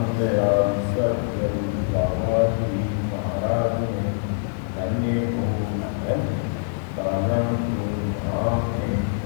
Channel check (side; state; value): right; silent; digital silence